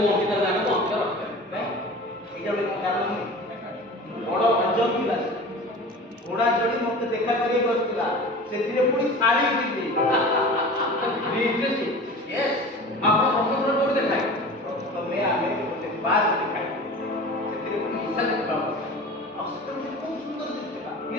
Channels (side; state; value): both; normal; correlation 0.37